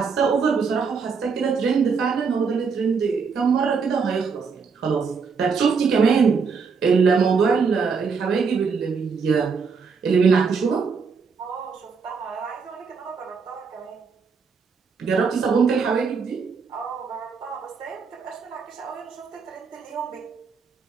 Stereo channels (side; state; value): left; quieter; 5.4 dB